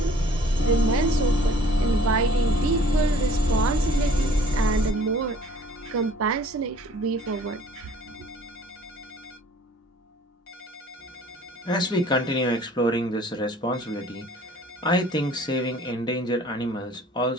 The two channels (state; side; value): normal; both; correlation 0.53